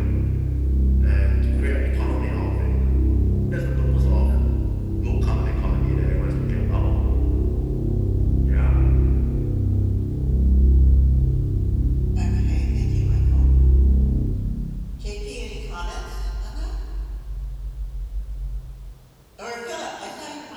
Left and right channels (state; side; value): identical; both; correlation 1.00